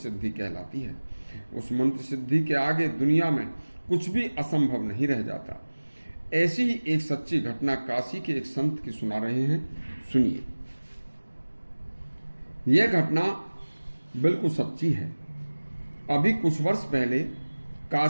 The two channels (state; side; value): inverted; both; correlation -1.00